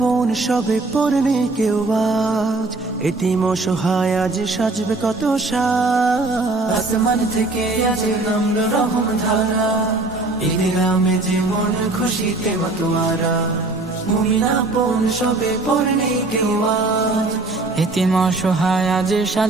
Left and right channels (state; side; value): quieter; left; 3.2 dB